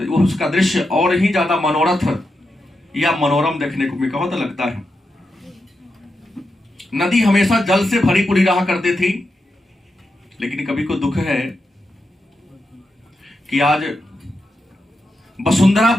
उसका दृश्य और ही ज्यादा मनोरथ या मनोरम देखने को बहुत लगता है। नदी हमेशा जल से भरी पूरी रहा करती थी, लेकिन कभी को दुख है कि आज वसुंधरा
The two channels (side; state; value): both; normal; correlation 0.87